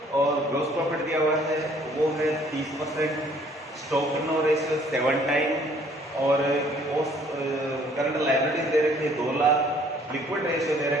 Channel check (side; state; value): both; normal; correlation 0.59